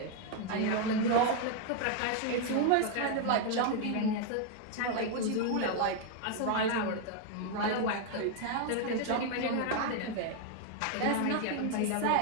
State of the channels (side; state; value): both; different; correlation 0.01